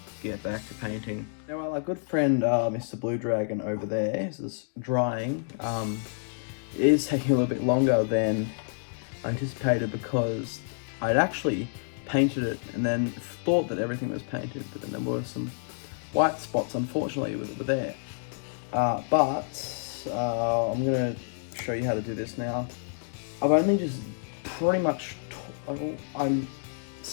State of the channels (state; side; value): silent; right; digital silence